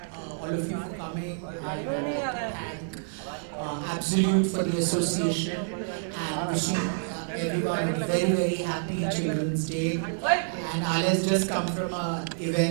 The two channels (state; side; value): silent; left; 59 dB below the other